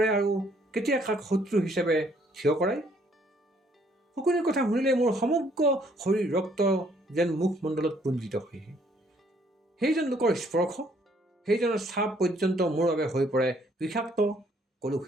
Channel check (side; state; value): both; normal; correlation 0.65